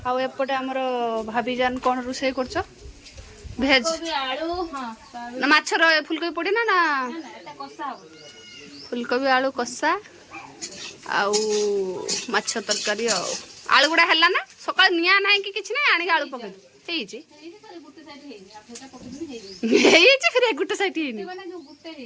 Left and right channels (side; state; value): both; identical; correlation 1.00